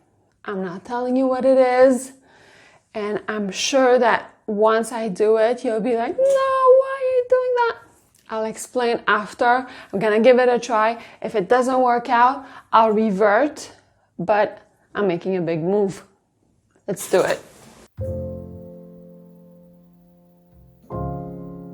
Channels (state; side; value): identical; both; correlation 1.00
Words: I'm not telling you what it is, and I'm sure that once I do it, you'll be like, no, why are you doing that? I'll explain after. I'm gonna give it a try. If it doesn't work out, I'll revert, but I'm making a big move. Let's do it.